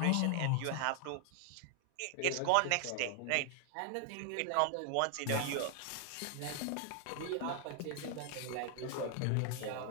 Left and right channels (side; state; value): both; different; correlation 0.00